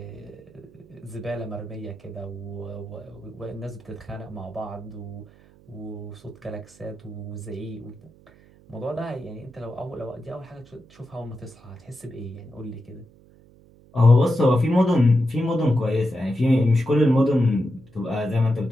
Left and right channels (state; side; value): noise; right; hum, 26 dB below the sound